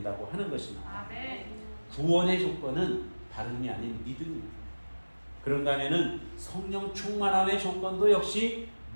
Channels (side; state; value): both; inverted; correlation -1.00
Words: 하는 것입니다. 구원의 조건은 다름이 아닌 믿음입니다. 그런가 하면은 성령 충만함의 조건도 역시